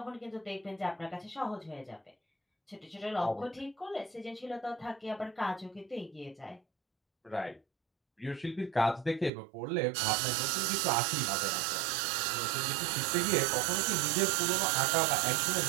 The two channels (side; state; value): left; drops out; at 9.3 s